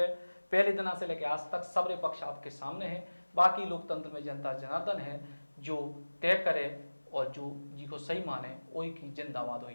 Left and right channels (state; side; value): inverted; both; correlation -1.00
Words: पहले दिन से लेकर आज तक सबरे पक्ष आपके सामने है। बाकी लोकतंत्र में जनता जनार्दन है जो तय करे और जो जी को सही माने वही की जिंदाबाद